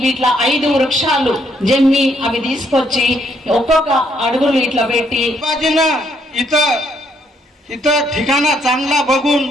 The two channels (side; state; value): both; normal; correlation 0.72